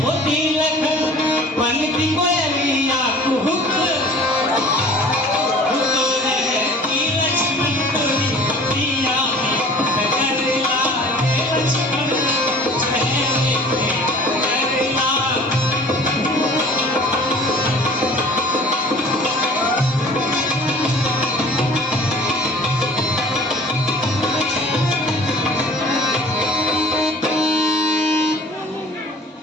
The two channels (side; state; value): both; normal; correlation 0.47